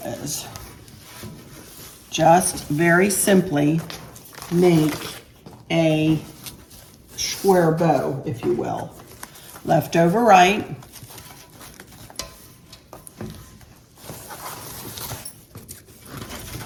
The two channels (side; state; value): both; identical; correlation 1.00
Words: is just very simply make a square bow, if you will. Left over right.